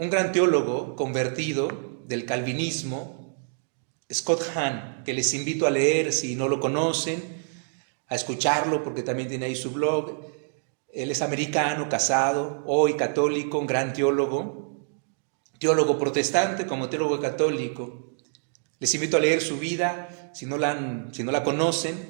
gran teólogo convertido del calvinismo, Scott Hahn, que les invito a leer si no lo conocen, a escucharlo porque también tiene ahí su blog. Él es americano, casado, hoy católico, un gran teólogo protestante como teólogo católico. Les invito a leer su vida, si no la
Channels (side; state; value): left; silent; digital silence